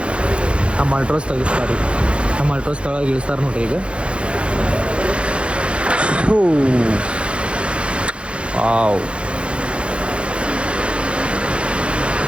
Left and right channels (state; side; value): late; left; 0.059 ms